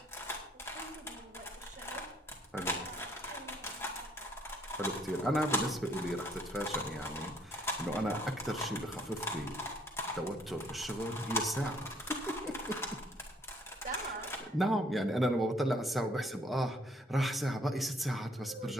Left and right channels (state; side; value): normal; both; correlation 0.64